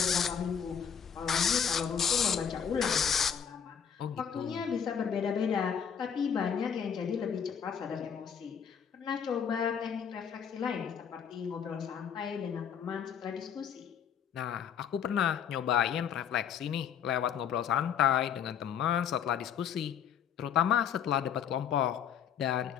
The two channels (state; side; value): quieter; right; 8.0 dB